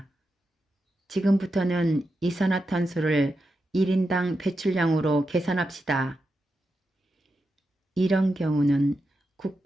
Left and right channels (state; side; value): normal; both; correlation 0.88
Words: 지금부터는 이산화탄소를 1인당 배출량으로 계산합시다. 이런 경우는